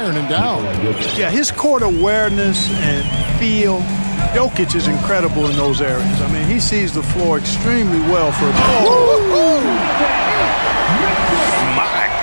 and down. Yeah, his court awareness and feel, Jokic is incredible in those areas. I mean, he sees the floor extremely well for a ball. My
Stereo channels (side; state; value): both; inverted; correlation -1.00